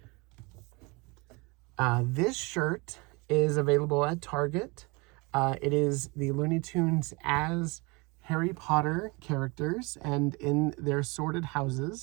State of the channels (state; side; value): quieter; left; 27.1 dB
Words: This shirt is available at Target. It is the Looney Tunes as Harry Potter characters and in their sorted